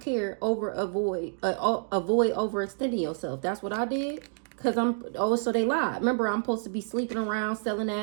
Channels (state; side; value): silent; left; digital silence